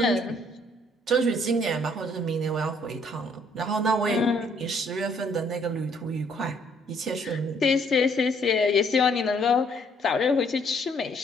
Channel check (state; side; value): normal; both; correlation 0.65